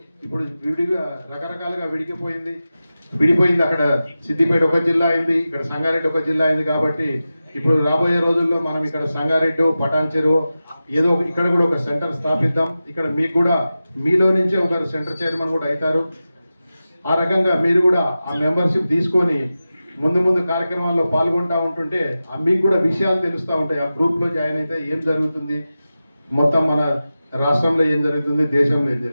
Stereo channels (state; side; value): inverted; both; correlation -0.94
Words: ఇప్పుడు విడిగా రకరకాలుగా విడిపోయింది. అక్కడ సిద్దిపేట ఒక జిల్లా అయింది, ఇక్కడ సంగారెడ్డి ఒక జిల్లా అయింది. కాబట్టి ఇప్పుడు రాబోయే రోజుల్లో మనం ఇక్కడ సంగారెడ్డి పటాన్చెరు ఏదో ఇక్కడ కూడా ఒక సెంటర్ స్థాపిద్దాం. ఇక్కడ మీకు కూడా మీలో నుంచే ఒకరు సెంటర్ చైర్మన్ కూడా అవుతారు. ఆ రకంగా మీరు కూడా ఆ మెంబర్షిప్ తీసుకొని ముందు కార్యక్రమాల్లో పాల్గొంటూ ఉంటుంటే మీకు కూడా విషయాలు తెలుస్తూ ఉంటాయి. ఆ గ్రూప్లో జాయిన్ అయితే ఏం జరుగుతుంది, మొత్తం మన రాష్ట్రంలో ఏం జరుగుతుంది, దేశంలో ఏం